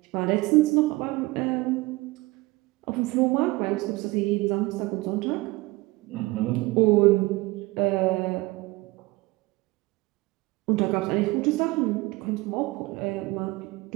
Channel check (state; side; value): quieter; left; 22.0 dB